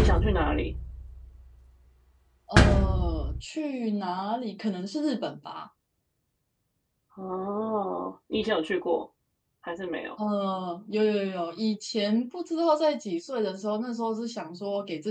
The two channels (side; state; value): both; identical; correlation 1.00